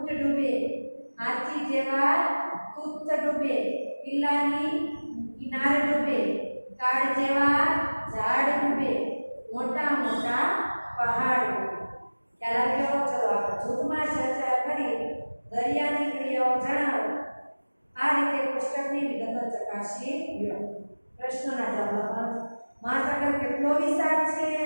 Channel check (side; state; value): both; inverted; correlation -1.00